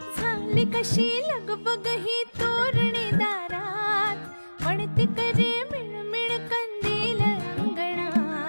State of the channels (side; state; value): both; inverted; correlation -1.00